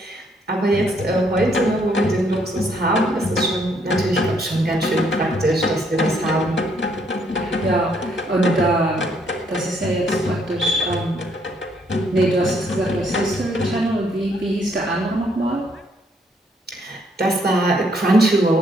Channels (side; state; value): both; normal; correlation 0.70